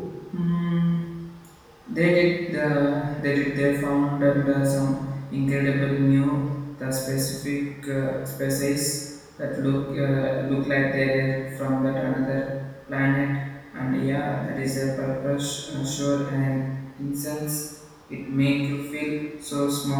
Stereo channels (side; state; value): both; identical; correlation 1.00